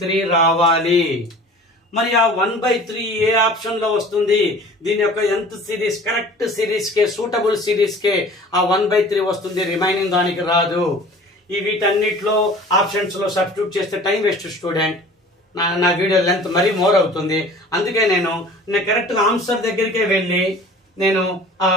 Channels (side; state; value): both; normal; correlation 0.45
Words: రావాలి. మరి ఆ 1/3 ఏ ఆప్షన్ లో వస్తుంది? దీని యొక్క nth సిరీస్, కరెక్ట్ సిరీస్ కే, సూటబుల్ సిరీస్ కే ఆ 1/3 వస్తుంది, రిమైనింగ్ దానికి రాదు. ఈ వీటన్నిటిలో ఆప్షన్స్ లో సబ్స్టిట్యూట్ చేస్తే టైం వేస్ట్ స్టూడెంట్. నా వీడియో లెంత్ మరీ మోర్ అవుతుంది. అందుకే నేను కరెక్ట్ ఆన్సర్ దగ్గరికే వెళ్ళి నేను ఆ